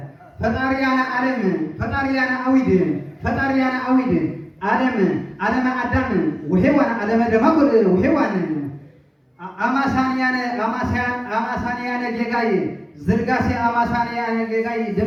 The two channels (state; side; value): identical; both; correlation 1.00